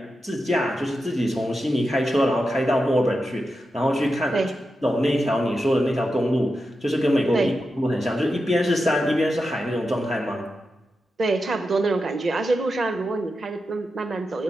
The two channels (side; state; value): both; normal; correlation 0.89